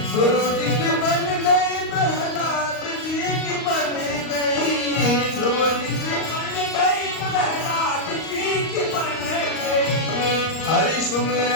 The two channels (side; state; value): right; late; 38 ms